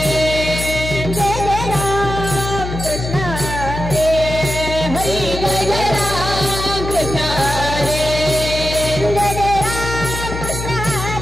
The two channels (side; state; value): left; noise; hum, 6 dB below the sound